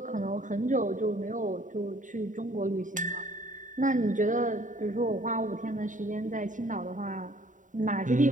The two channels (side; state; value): left; late; 0.37 ms